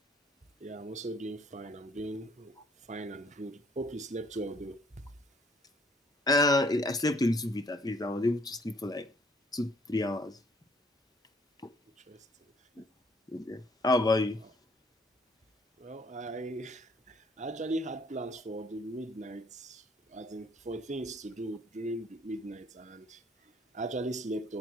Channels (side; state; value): both; normal; correlation 0.62